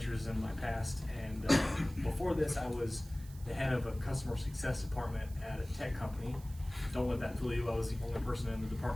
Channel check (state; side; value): noise; right; hiss, 21 dB below the sound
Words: in my past, and before this I was the head of a customer success department at a tech company. Don't let that fool you, I was the only person in the